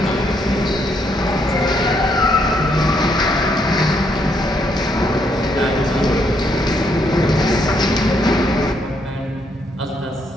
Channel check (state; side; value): normal; both; correlation 0.73